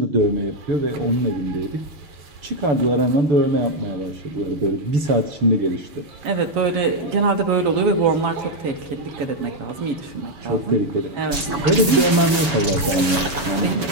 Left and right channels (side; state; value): left; late; 7.1 ms